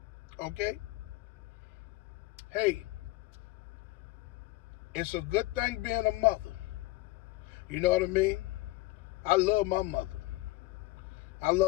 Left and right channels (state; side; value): quieter; right; 19.6 dB